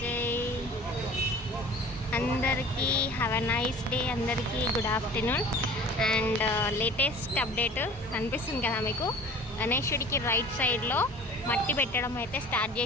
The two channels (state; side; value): normal; both; correlation 0.43